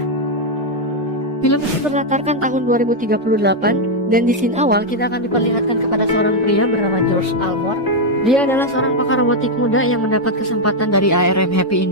Film ini berlatarkan tahun 2038, dan di scene awal kita akan diperlihatkan kepada seorang pria bernama George Almore. Dia adalah seorang pakar robotik muda yang mendapat kesempatan dari ARM Happy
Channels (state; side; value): normal; both; correlation 0.01